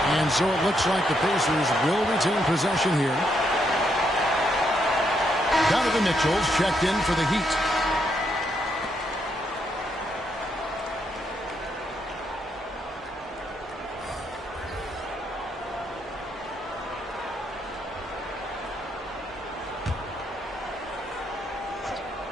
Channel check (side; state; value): both; normal; correlation 0.77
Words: And so it looks like the Pacers will retain possession here. Donovan Mitchell's checked in for the Heat.